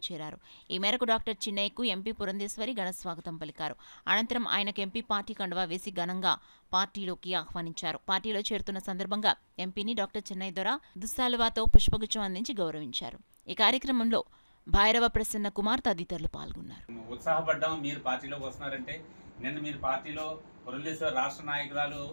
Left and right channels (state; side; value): inverted; both; correlation -1.00